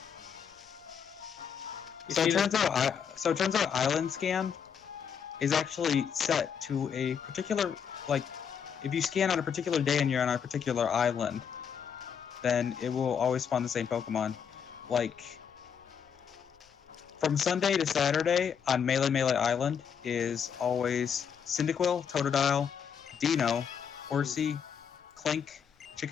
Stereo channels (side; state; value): right; quieter; 7.4 dB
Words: You so it seen turns out Island Scan is actually set to a particular, like, if you scan on a particular day and you're on a particular island, then it will always spawn the same Pokemon. Like, from Sunday to Saturday on Melee Island is always Cyndaquil, Totodile, Dino, Horsey, Clink,